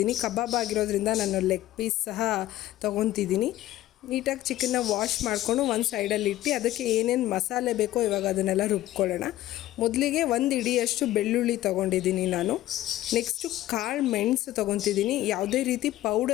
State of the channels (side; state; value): right; quieter; 14.8 dB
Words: ಕಬಾಬ್ ಆಗಿರೋದ್ರಿಂದ ನಾನು ಲೆಗ್ ಪೀಸ್ ಸಹ ತೊಗೊತಿದ್ದೀನಿ. ನೀಟಾಗಿ ಚಿಕನ್ನ ವಾಶ್ ಮಾಡಿಕೊಂಡು ಒಂದು ಸೈಡಲ್ಲಿ ಇಟ್ಟು ಅದಕ್ಕೆ ಏನೇನು ಮಸಾಲೆ ಬೇಕೋ ಇವಾಗ ಅದನ್ನೆಲ್ಲ ರುಬ್ಕೊಳ್ಳೋಣ. ಮೊದಲಿಗೆ 1 ಹಿಡಿಯಷ್ಟು ಬೆಳ್ಳುಳ್ಳಿ ತೊಗೊಂಡಿದ್ದೀನಿ ನಾನು. ನೆಕ್ಸ್ಟು ಕಾಳು ಮೆಣಸು ತೊಗೊತಿದ್ದೀನಿ. ಯಾವುದೇ ರೀತಿ